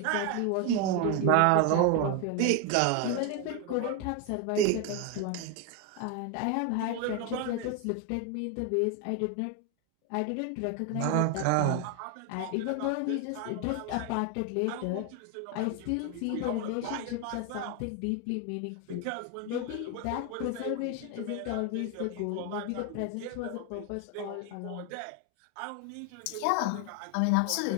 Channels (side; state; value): both; different; correlation 0.01